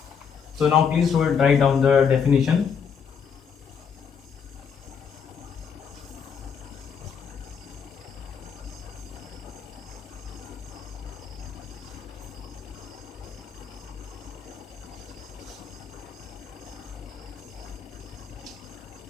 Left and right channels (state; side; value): quieter; right; 6.7 dB